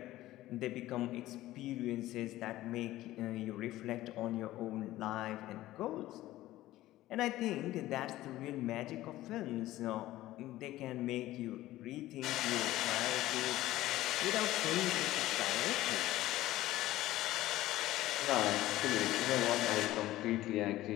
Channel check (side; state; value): right; quieter; 15.8 dB